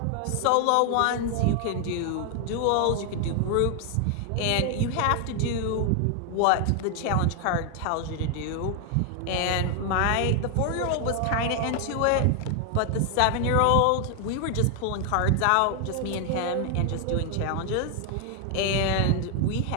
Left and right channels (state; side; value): different; both; correlation 0.00